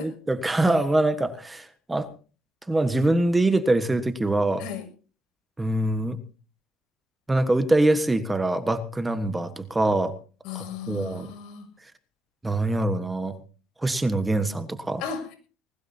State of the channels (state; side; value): normal; both; correlation 0.90